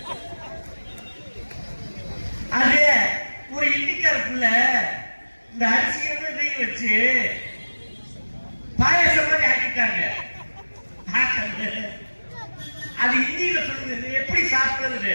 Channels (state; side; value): inverted; both; correlation -1.00